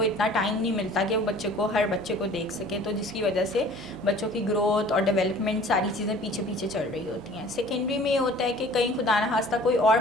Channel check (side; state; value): both; normal; correlation 0.48